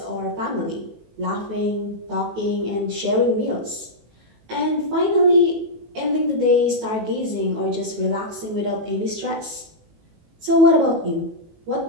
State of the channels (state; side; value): late; left; 18 ms